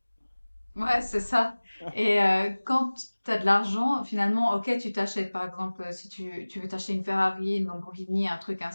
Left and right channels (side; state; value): both; inverted; correlation -1.00